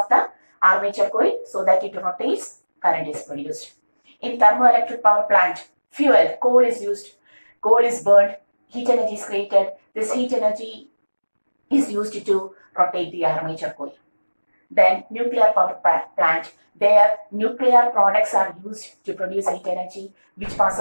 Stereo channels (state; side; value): inverted; both; correlation -1.00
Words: the armature coil so that it rotates. Current is produced. In thermoelectric power plant, fuel, coal is used. Coal is burned. Heat energy is created. This heat energy is used to rotate the armature coil. Then nuclear power plant, their nuclear products are used to produce heat energy which